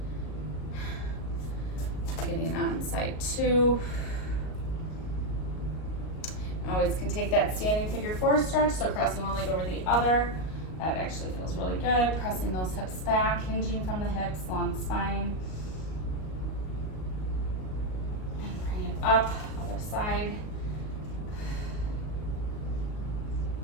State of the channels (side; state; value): right; late; 38 ms